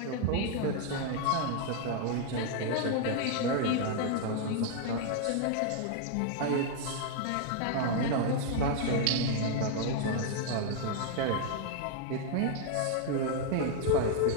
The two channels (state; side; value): different; both; correlation 0.00